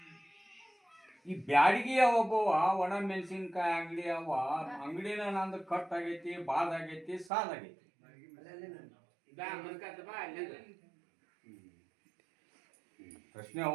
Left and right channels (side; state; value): left; drops out; at 7.3 s